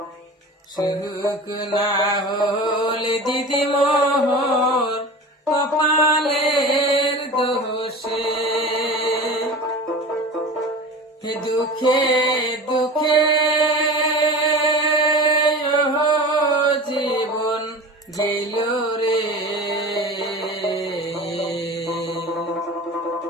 সুখ না হলে দিদি মোহর কপালের দোষে। দুঃখে দুঃখে জীবন গেল রে,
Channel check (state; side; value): normal; both; correlation 0.34